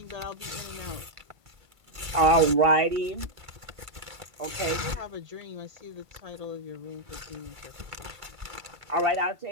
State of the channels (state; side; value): late; left; 2.3 ms